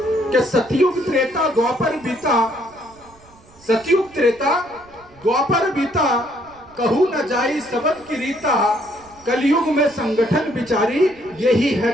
कि सतयुग त्रेता द्वापर बीता, सतयुग त्रेता द्वापर बीता, कहू न जाई सबद की रीता, कलयुग में संगठन विचारी, यही है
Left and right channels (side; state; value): right; noise; rumble, 27 dB below the sound